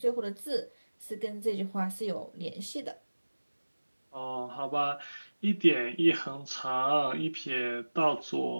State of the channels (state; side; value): inverted; both; correlation -1.00